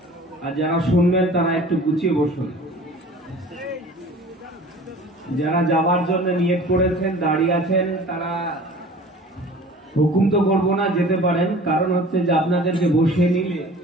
আর যারা শুনবেন তারা একটু গুছিয়ে বসুন। যারা যাওয়ার জন্য নিয়ত করেছেন, দাঁড়িয়ে আছেন, তারা হুকুম তো করবো না, যেতে পারেন। কারণ হচ্ছে যে আপনাদেরকে বসিয়ে নিলে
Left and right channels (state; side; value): normal; both; correlation 0.44